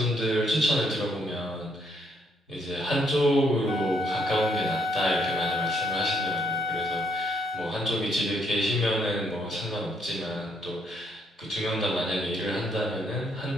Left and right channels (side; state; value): both; normal; correlation 0.71